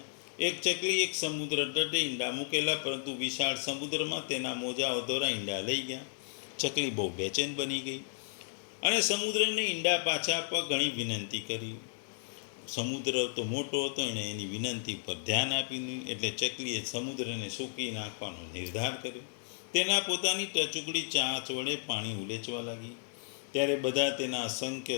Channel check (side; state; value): right; silent; digital silence